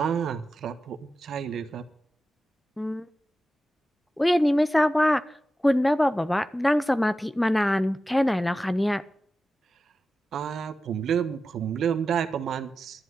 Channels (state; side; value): normal; both; correlation 0.93